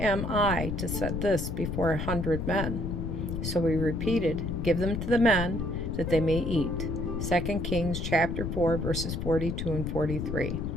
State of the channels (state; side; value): noise; left; rumble, 3 dB below the sound